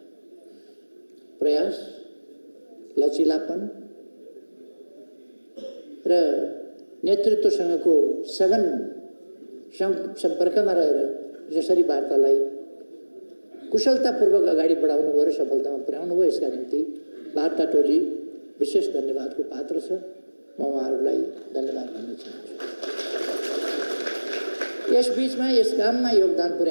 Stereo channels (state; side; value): inverted; both; correlation -1.00